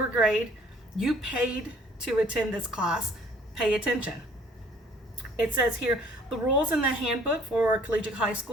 grade. You paid to attend this class. Pay attention. It says here, the rules in the handbook for Collegiate High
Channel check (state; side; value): normal; both; correlation 0.56